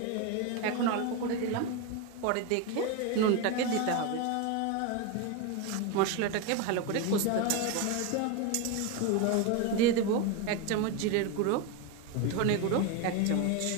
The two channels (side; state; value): both; different; correlation 0.03